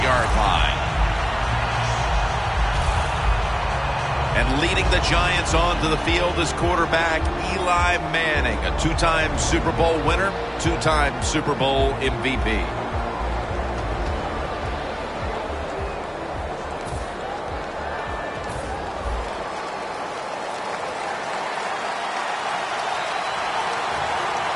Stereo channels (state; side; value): identical; both; correlation 1.00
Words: line. And leading the Giants onto the field is quarterback Eli Manning, a two-time Super Bowl winner, two-time Super Bowl MVP.